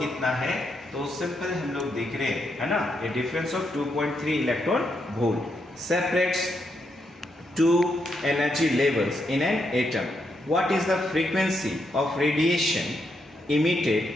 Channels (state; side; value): normal; both; correlation 0.80